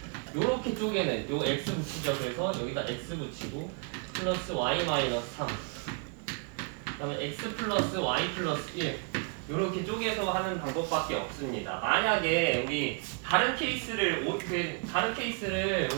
요렇게 쪼개는 요 x 붙이죠. 그래서 여기다 x 붙이고 플러스 y 마이너스 3 그다음에 x 플러스 y 플러스 1 요렇게 쪼개서 하는 방법밖에 없습니다. 만약에 우리 다른 케이스를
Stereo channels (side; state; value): left; quieter; 37.8 dB